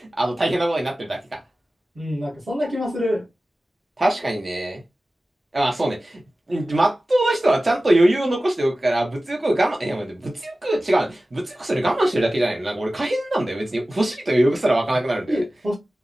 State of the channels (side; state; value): both; normal; correlation 0.96